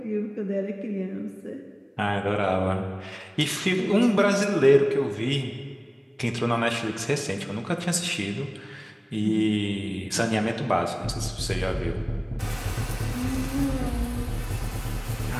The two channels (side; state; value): both; identical; correlation 1.00